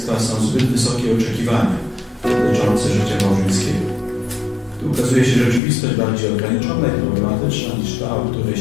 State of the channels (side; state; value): right; drops out; at 5.6 s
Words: są zbyt wysokie oczekiwania dotyczące życia małżeńskiego. Tu ukazuje się rzeczywistość bardziej ograniczona i problematyczna niż ta, o której